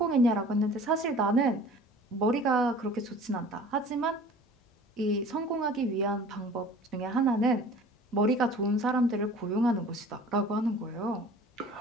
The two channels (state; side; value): normal; both; correlation 0.45